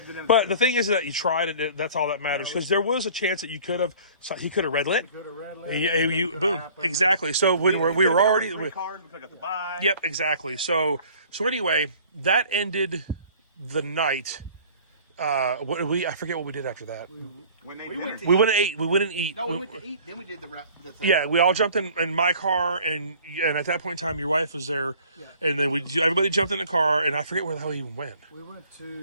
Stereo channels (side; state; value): both; inverted; correlation -0.50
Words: to do- But the thing is that you tried it. That's all that matters. Because there was a chance that he could have red lit. Could have red lit. Yeah, Anything you could boom. happen. Exactly. So when we were already. 3 cars. We took out the buy. Yep, exactly. So anyway, that ended the night. I forget what we did after that. When they We dinner. went to We went to eat. We went and eat. No, we went to eat. Then we did the thing. Yeah, we all jumped in my car, and at that point in time, your wife was there, and then everybody jumped in the car, and I forget where the hell we even went. We went